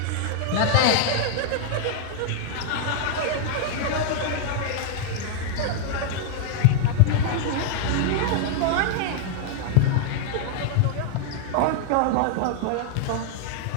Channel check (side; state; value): both; different; correlation 0.00